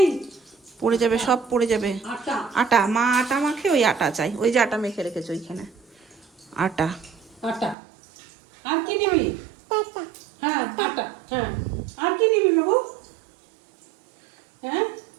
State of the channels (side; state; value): left; drops out; at 7.8 s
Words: পড়ে যাবে, সব পড়ে যাবে। আটা আটা, মা আটা মাখে, ওই আটা চাই, ওই যে আটা মেখে রেখেছো ওইখানে আটা। আটা আর কি নিবি? হ্যাঁ আটা, হ্যাঁ আর কি নিবি বাবু? হ্যাঁ